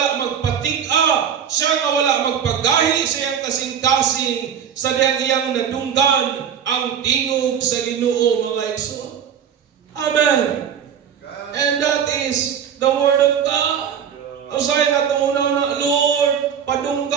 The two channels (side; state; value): left; quieter; 8.2 dB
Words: magpatig-a, siya nga wala magpagahi sa iyang kasing-kasing, sa iyang nadunggan ang tingog sa Ginoo mga igsoon. Amen. And that is the word of God. Usay nga tumunaw na, Lord,